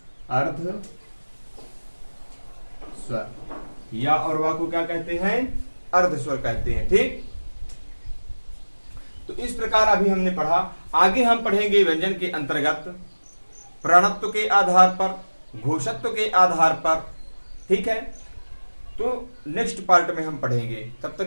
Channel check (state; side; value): inverted; both; correlation -1.00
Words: अर्ध स्वर। या और वा को क्या कहते हैं? अर्ध स्वर कहते हैं। ठीक। तो इस प्रकार अभी हमने पढ़ा। आगे हम पढ़ेंगे व्यंजन के अंतर्गत प्रणत्व के आधार पर, घोषत्व के आधार पर। ठीक है। तो नेक्स्ट पार्ट में हम पढ़ेंगे। तब